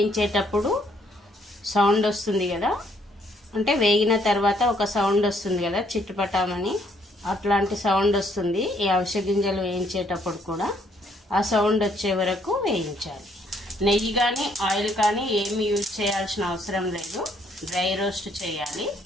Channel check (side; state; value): both; normal; correlation 0.68